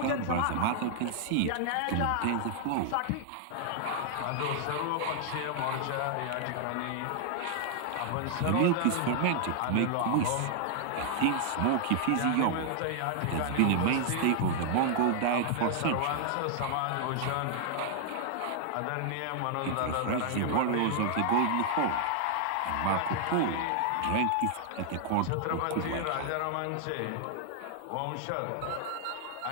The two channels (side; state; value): both; different; correlation -0.01